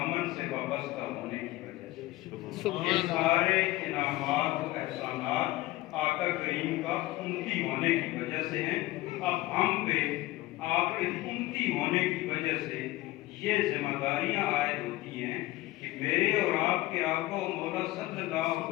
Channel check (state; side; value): quieter; right; 18.1 dB